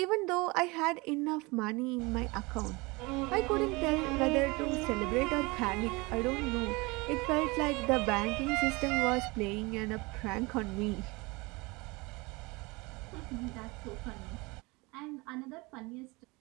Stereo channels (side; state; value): left; quieter; 25.1 dB